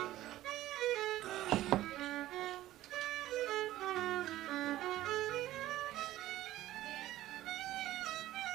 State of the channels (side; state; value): left; quieter; 14.9 dB